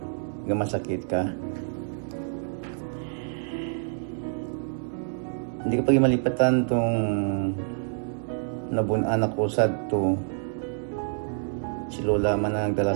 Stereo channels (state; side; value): silent; left; digital silence